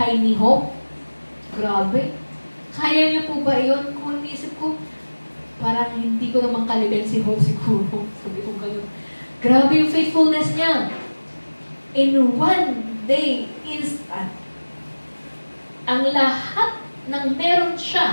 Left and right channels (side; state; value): both; inverted; correlation -1.00